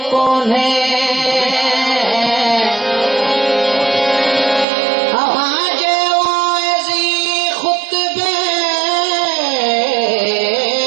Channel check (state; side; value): drops out; left; at 4.7 s